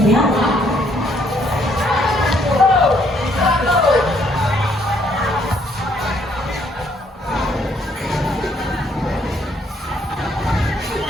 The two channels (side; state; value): both; normal; correlation 0.68